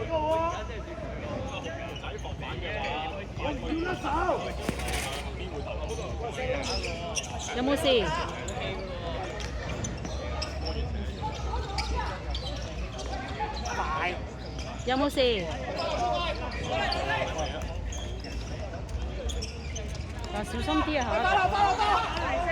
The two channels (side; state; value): both; identical; correlation 1.00